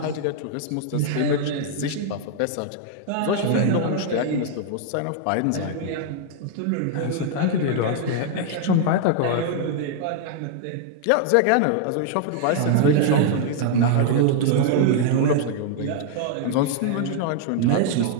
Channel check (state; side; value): different; both; correlation 0.00